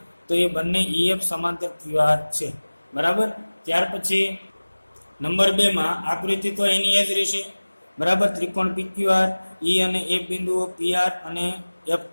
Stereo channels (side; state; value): both; inverted; correlation -1.00